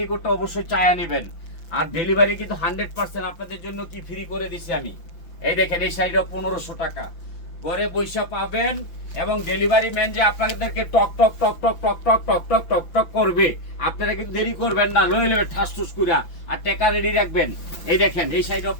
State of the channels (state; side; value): late; right; 5.9 ms